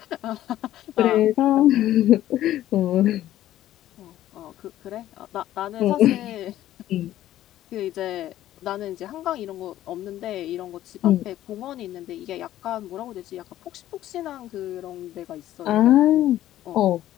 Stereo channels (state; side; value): quieter; right; 13.3 dB